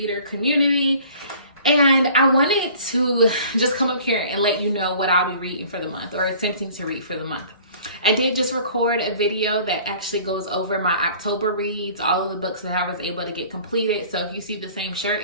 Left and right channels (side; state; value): both; inverted; correlation -0.49